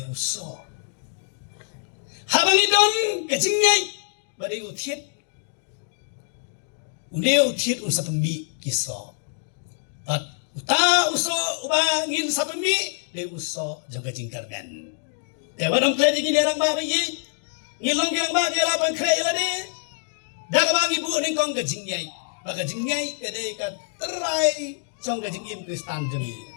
uso. Habang idon kecingay badai utiet unsa pembi kiso at uta uso ubangin sa pembi de uso jaga jingkarmen te wadong kledi gini orang ba yi ngilong yang ba dia lapan kre ilade daga bang ibu ning kong kecingay baga jingay kede ka terai song kecingim kristan jengi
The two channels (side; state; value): right; silent; digital silence